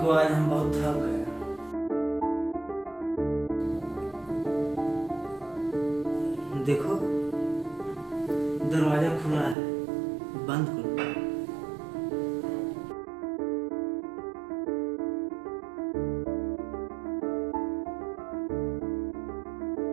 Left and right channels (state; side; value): drops out; left; at 9.6 s